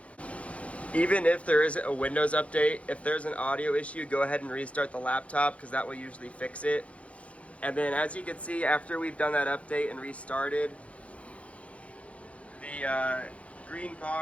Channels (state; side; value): late; right; 0.064 ms